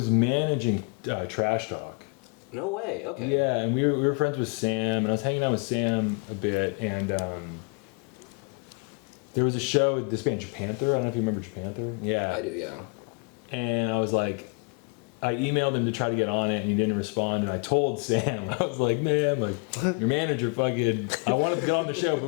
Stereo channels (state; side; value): quieter; right; 33.9 dB